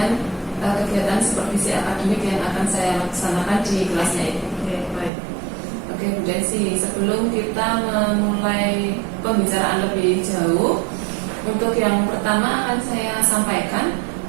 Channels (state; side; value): drops out; left; at 5.1 s